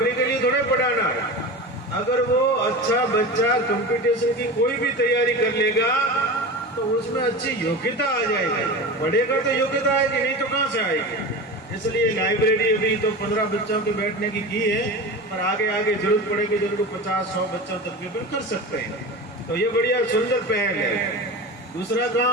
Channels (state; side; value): normal; both; correlation 0.29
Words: के लिए थोड़े पढ़ाना है। अगर वो अच्छा बच्चा कंपटीशन की कोई भी तैयारी कर लेगा तो उसमें अच्छी योग्यता आ जाएगी। पढ़ेगा तो योग्यता आएगी, नहीं तो कहाँ से आएगी। इसलिए लाइब्रेरी अभी तो 15 बच्चों के बैठने की है, पर आगे आगे जरूरत पड़ेगी तो उनको 50-100 बच्चों तक भी कर सकते हैं। तो ये बढ़िया सुंदर पहल है। दूसरा